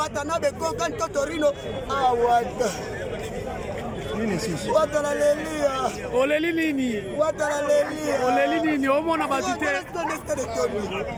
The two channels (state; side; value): identical; both; correlation 1.00